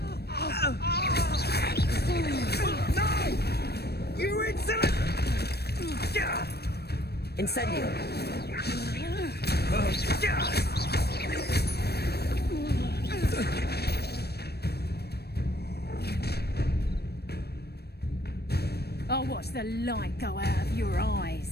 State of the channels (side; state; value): right; late; 0.47 ms